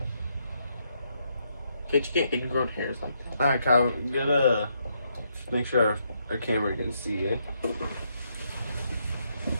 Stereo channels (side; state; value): both; inverted; correlation -0.77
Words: Can't you get ingrown hairs like that? Alright, Kyle, make sure our camera can see, eh?